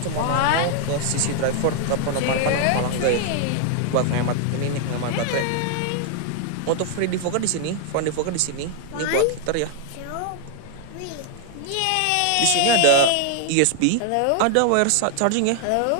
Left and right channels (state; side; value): different; both; correlation 0.00